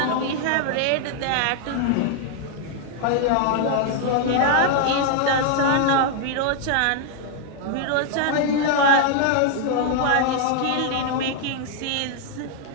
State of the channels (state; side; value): different; both; correlation 0.00